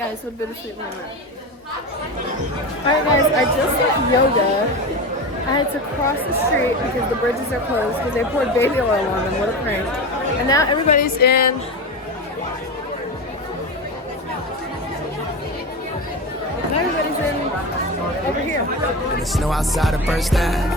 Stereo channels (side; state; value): both; normal; correlation 0.23